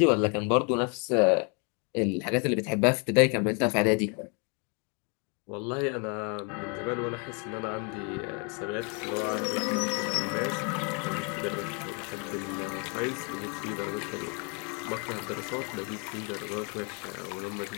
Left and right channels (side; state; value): right; quieter; 35.4 dB